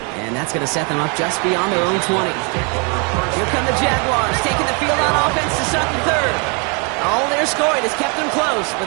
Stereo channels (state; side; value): quieter; left; 34.7 dB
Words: And that's going to set them up just beyond their own 20. Here come the Jaguars, taking the field on offense to start the third. All their scoring has kept them close, but